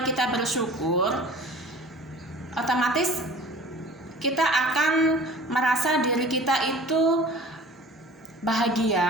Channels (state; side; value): normal; both; correlation 0.45